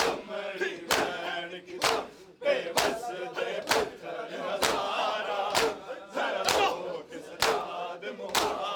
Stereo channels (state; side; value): identical; both; correlation 1.00